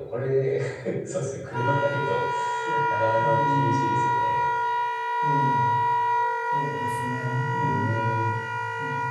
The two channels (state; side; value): identical; both; correlation 1.00